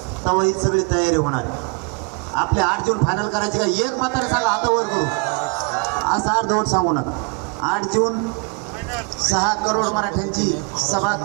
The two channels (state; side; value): quieter; left; 33.8 dB